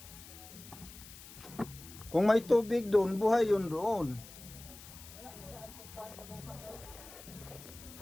Kung may tubig doon, buhay yun doon.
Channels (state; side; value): noise; left; hiss, 17 dB below the sound